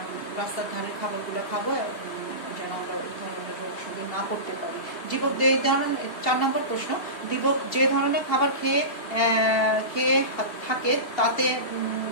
রাস্তার ধারে খাবারগুলো খাবো, যেন আমরা এই ধরনের রোগ শরীরে না করতে পারি। দীপক এই ধরনের 4 নম্বর প্রশ্ন, দীপক যে ধরনের খাবার খেয়ে থাকে তাতে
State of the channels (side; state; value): right; late; 2.8 ms